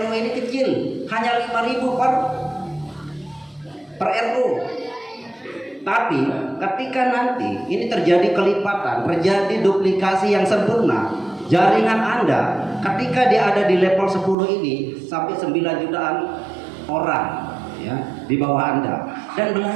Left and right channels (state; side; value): drops out; left; at 14.4 s